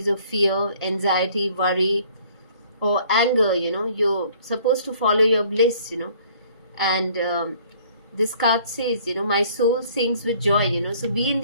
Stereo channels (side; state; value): both; inverted; correlation -0.57